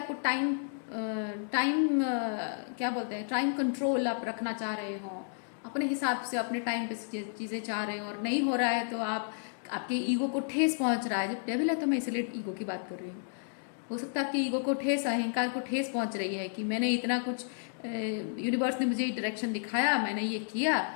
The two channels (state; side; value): silent; right; digital silence